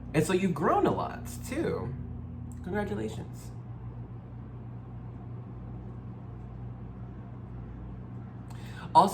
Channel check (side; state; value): both; identical; correlation 1.00